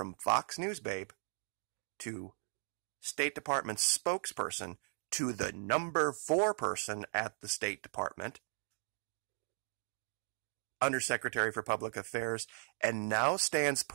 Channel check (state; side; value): silent; left; 53 dB below the other